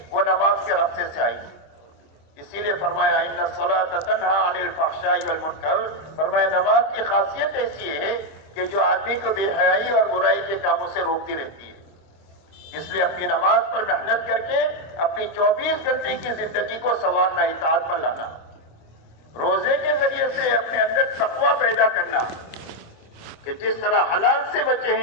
وہ نماز کے راستے سے آئے گی. اسی لیے فرمایا ان الصلاۃ تنہا عن الفحشاء والمنکر. فرمایا نماز کی خاصیت ایسی ہے کہ جو آدمی کو بے حیائی اور برائی کے کاموں سے روکتی رہتی ہے. اس لیے اپنی نماز پر محنت کر کے اپنی 24 گھنٹے کی زندگی کو سنوارنا, اطاعت پر لانا. روزے کے ذریعے سے اپنے اندر تقویٰ پیدا کرنا کہ جس طرح حلال سے بچے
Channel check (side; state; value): right; late; 25 ms